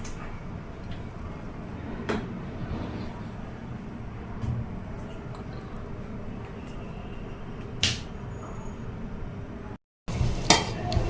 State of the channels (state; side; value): identical; both; correlation 1.00